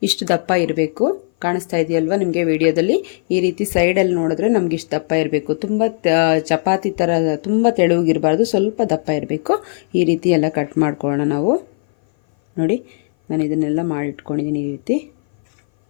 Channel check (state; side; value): silent; right; 59 dB below the other